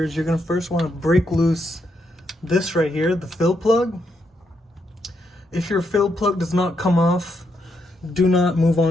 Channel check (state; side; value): normal; both; correlation 0.79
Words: You're going to first want to break loose this right here, the fill plug. If your fill plug does not come off, do not move